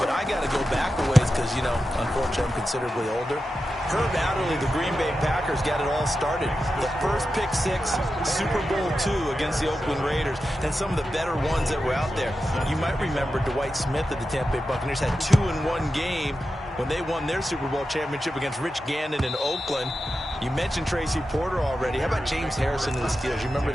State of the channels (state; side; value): normal; both; correlation 0.91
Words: I got to go back a ways because, you know, unfortunately I'm considerably older. Herb Adderley, the Green Bay Packers, got it all started. The first pick six, Super Bowl II against the Oakland Raiders, and some of the better ones that were out there. You might remember Dwight Smith of the Tampa Bay Buccaneers had 2 in one game when they won their Super Bowl championship against Rich Gannon in Oakland. You mentioned Tracy Porter already. How about James Harrison of the Steelers? You remember